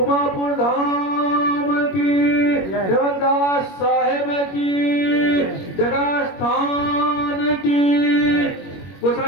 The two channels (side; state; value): right; late; 21 ms